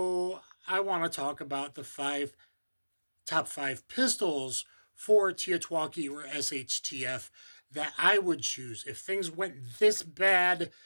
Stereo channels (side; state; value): both; inverted; correlation -1.00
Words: I want to talk about the top five pistols for TEOTWAWKI or SHTF that I would choose if things went this bad